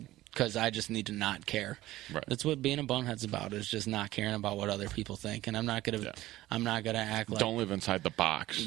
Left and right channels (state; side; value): quieter; left; 16.2 dB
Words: because I just need to not care. Right. That's what being a bonehead's about, is just not caring about what other people think, and I'm not gonna act like Don't live inside the box.